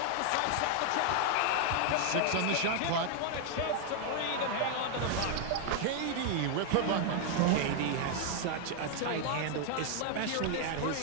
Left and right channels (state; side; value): different; both; correlation 0.00